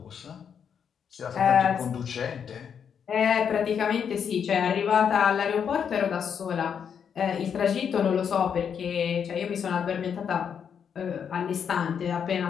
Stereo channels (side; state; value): right; quieter; 7.5 dB